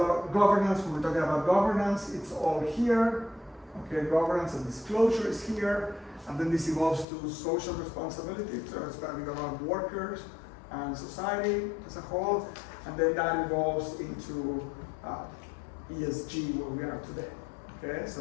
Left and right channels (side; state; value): right; drops out; at 7.1 s